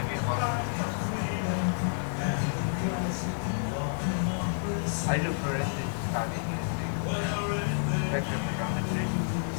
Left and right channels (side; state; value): right; silent; 58 dB below the other